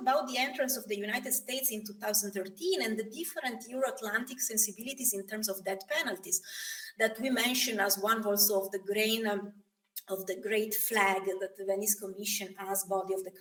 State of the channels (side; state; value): both; identical; correlation 1.00